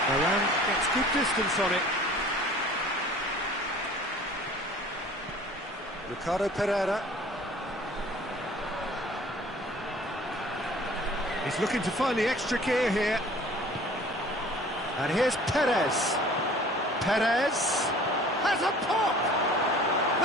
Varane gets good distance on it. Ricardo Pereira. He's looking to find the extra gear here. And here's Perez. Perez has a pop!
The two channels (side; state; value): both; normal; correlation 0.48